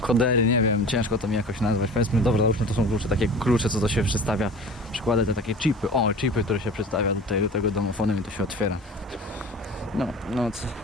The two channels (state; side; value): normal; both; correlation 0.39